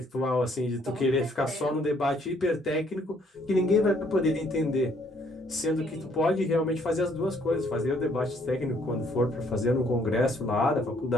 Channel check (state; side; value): normal; both; correlation 0.65